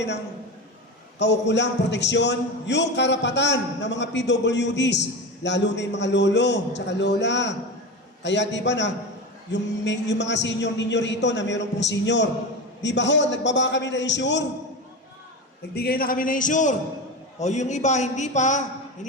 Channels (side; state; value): both; normal; correlation 0.24